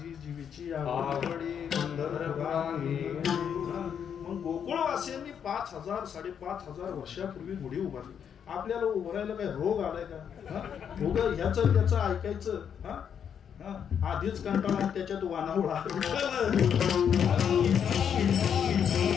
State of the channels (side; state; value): right; quieter; 8.0 dB